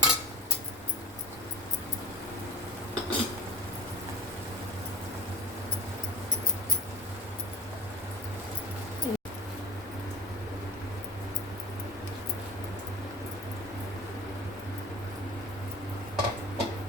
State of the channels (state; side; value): normal; both; correlation 0.31